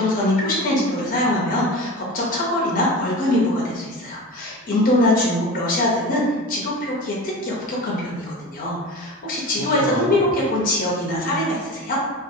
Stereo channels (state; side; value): normal; both; correlation 0.31